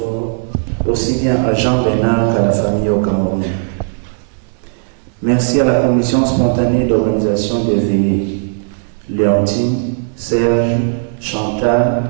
aussi bien à Jean Bénard qu'à la famille au Cameroun. Merci à la commission spontanée d'organisation des veillées, Léontine, Serge,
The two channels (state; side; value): silent; left; digital silence